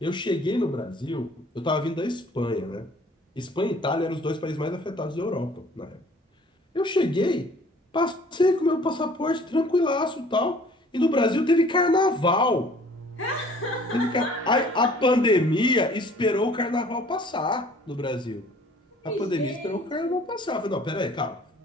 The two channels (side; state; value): both; normal; correlation 0.53